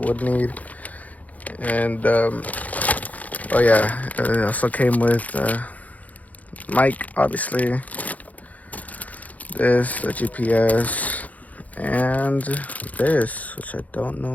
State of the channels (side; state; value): right; late; 0.074 ms